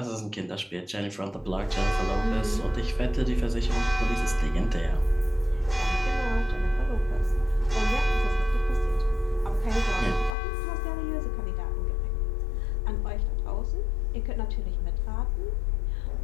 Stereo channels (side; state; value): right; drops out; at 10.4 s